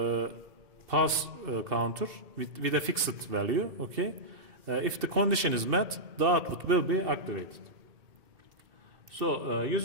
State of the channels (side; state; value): left; late; 2.7 ms